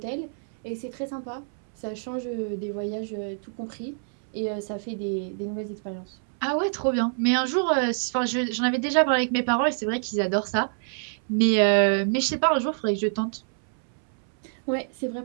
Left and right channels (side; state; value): left; silent; 61 dB below the other